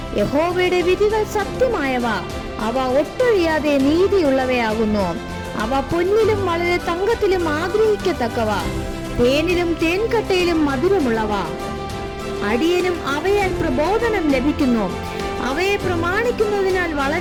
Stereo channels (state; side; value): identical; both; correlation 1.00